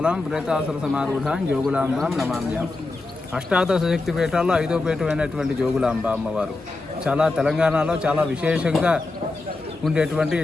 ప్రేతాసుర సమారూఢాం జోగులాంబాం నమామ్యాం. అష్టాదశ శక్తి పీఠాల్లో 5వ పీఠమైనటువంటి జోగులాంబ అమ్మవారు చాలా తెలంగాణలో చాలా విశేషంగా ఉండేటువంటి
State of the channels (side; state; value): right; quieter; 3.3 dB